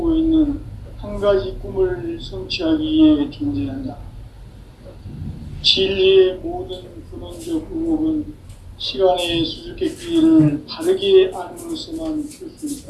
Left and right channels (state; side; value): identical; both; correlation 1.00